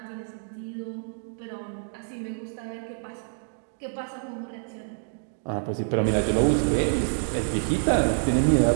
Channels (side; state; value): left; silent; digital silence